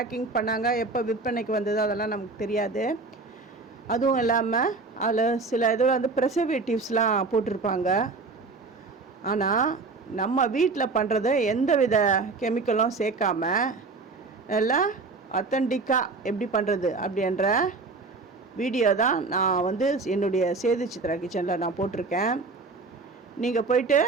பண்ணாங்க, எப்போ விற்பனைக்கு வந்தது அதெல்லாம் நமக்கு தெரியாது. அதுவும் இல்லாமல் அதில் சில இதில் வந்து ப்ரிசர்வேட்டிவ்ஸ்லாம் போட்டிருப்பாங்க. ஆனால் நம்ம வீட்டில் பண்ணுறது எந்த வித கெமிக்கலும் சேர்க்காம நல்லா அத்தன்டிக்காக எப்படி பண்ணுறது அப்படின்ற வீடியோ தான் நான் வந்து என்னுடைய சேது சித்ரா கிச்சனில் நான் போட்டிருக்கேன். நீங்கள் போயிட்டு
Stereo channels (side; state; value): left; quieter; 3.9 dB